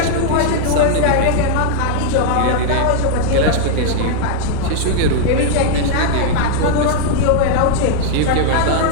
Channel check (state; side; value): different; both; correlation 0.00